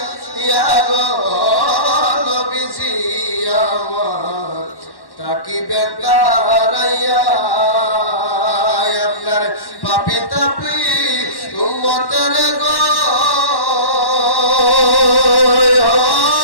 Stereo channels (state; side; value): late; right; 1.1 ms